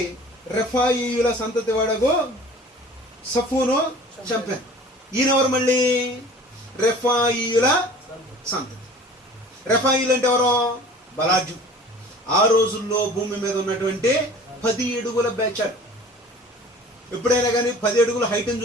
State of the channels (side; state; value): both; normal; correlation 0.45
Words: రెఫాయీయుల సంతతి వాడగు సఫూను చంపాను. ఈయనెవరు? మళ్ళీ రెఫాయీయుల సంతతి. రెఫాయీలు అంటే ఎవరో? బలాజు. ఆ రోజుల్లో భూమి మీద ఉన్నటువంటి 10 అడుగుల బ్యాచ్. ఎప్పుడైనా కానీ 10 అడుగుల హైట్ని